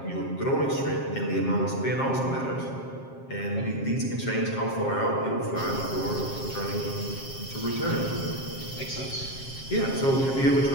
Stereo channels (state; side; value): late; right; 7.5 ms